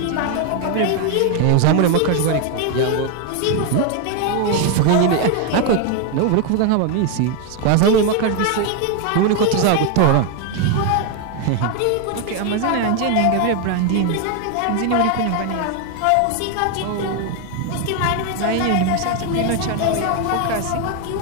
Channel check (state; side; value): different; both; correlation 0.01